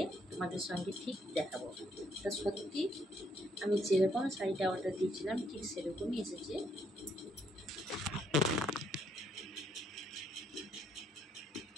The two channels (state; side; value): normal; both; correlation 0.71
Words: তোমাদের সঙ্গে ঠিক দেখাবো। তা সত্যি আমি যেরকম শাড়িটা অর্ডার দিয়েছিলাম ঠিক সেরকমই এসেছে।